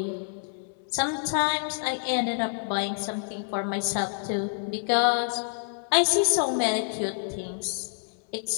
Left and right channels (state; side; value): silent; right; digital silence